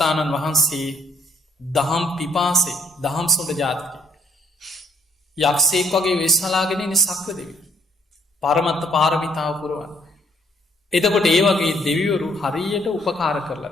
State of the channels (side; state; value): both; normal; correlation 0.66